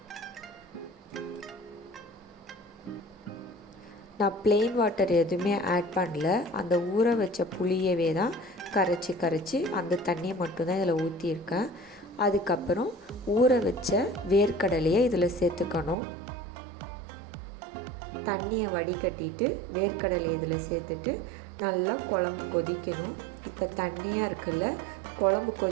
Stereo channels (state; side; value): drops out; left; at 16.0 s